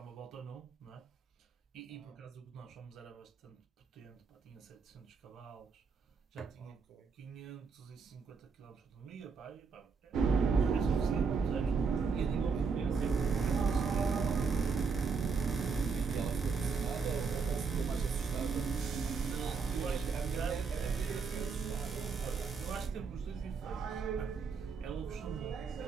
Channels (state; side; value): quieter; left; 5.1 dB